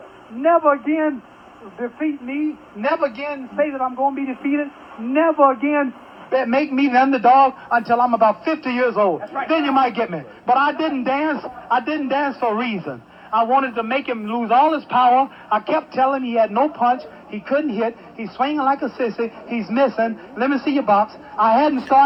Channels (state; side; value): identical; both; correlation 1.00